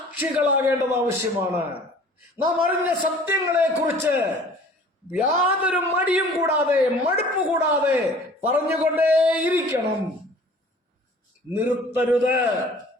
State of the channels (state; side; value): normal; both; correlation 0.49